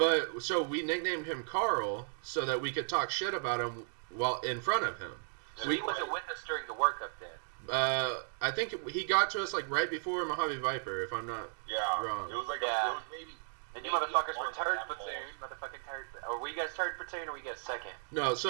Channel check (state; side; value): silent; left; digital silence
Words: so we nicknamed him Carl so that we could talk shit about him while in front of him. So he wasn't with us during the workup then. I think he got to us like right before Mojave Viper, if I'm not wrong. It was like it was maybe. And you motherfuckers were third platoon, Or were you guys third platoon, or were you guys second? No,